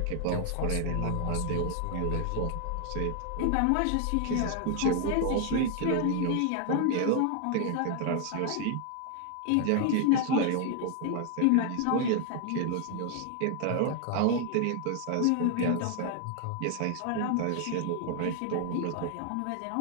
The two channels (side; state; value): both; different; correlation 0.00